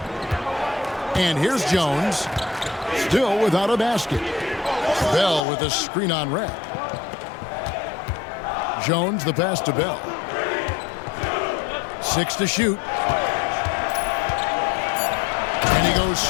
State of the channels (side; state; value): right; drops out; at 5.4 s